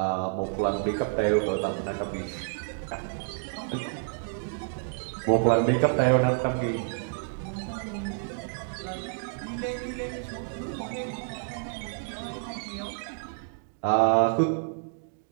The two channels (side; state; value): left; silent; digital silence